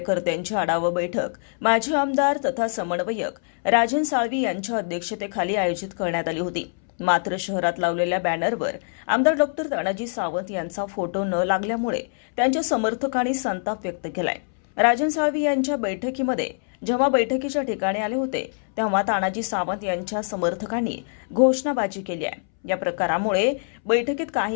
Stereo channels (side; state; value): right; silent; 62 dB below the other